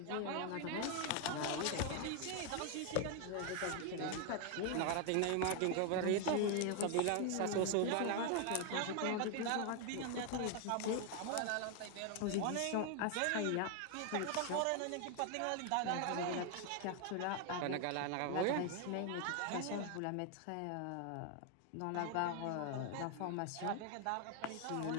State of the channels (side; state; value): both; different; correlation 0.01